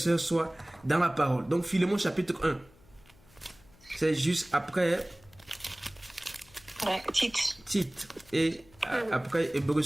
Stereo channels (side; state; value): left; noise; hum, 27 dB below the sound